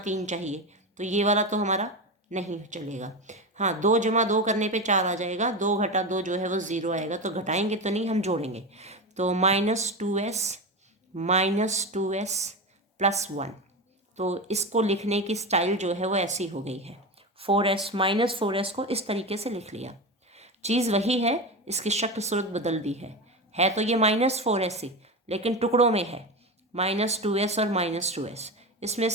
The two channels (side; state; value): both; normal; correlation 0.20